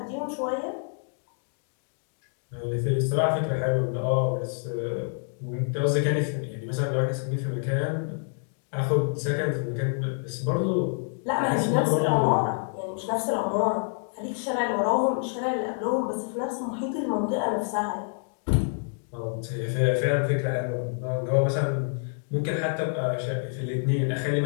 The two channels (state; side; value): silent; right; 60 dB below the other